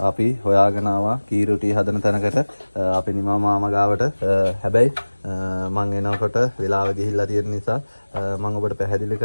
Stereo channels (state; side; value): inverted; both; correlation -1.00